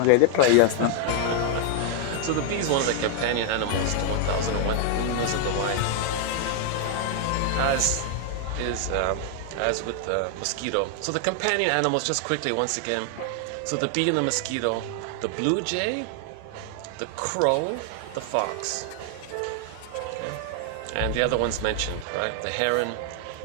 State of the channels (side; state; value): both; different; correlation 0.00